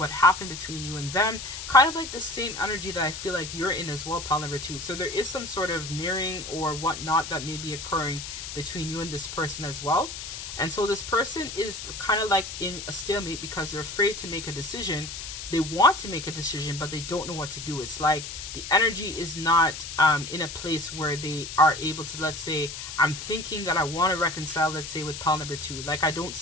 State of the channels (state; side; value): noise; left; hiss, 8 dB below the sound